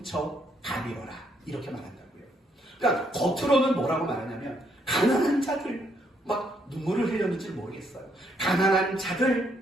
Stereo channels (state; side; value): normal; both; correlation 0.72